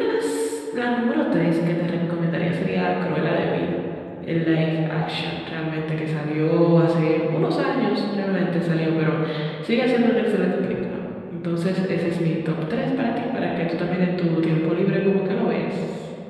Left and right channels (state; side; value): identical; both; correlation 1.00